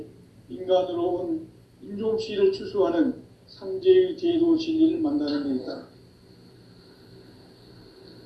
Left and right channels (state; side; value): identical; both; correlation 1.00